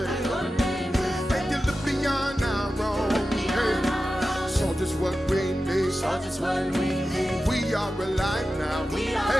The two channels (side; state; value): both; normal; correlation 0.93